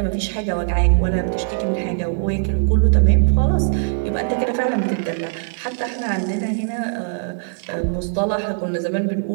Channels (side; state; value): left; silent; digital silence